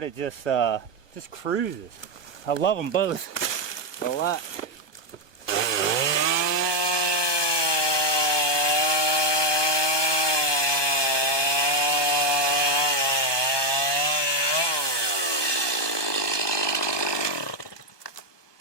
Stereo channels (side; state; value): right; late; 1.2 ms